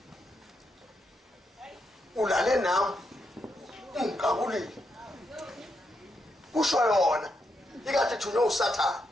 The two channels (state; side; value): normal; both; correlation 0.82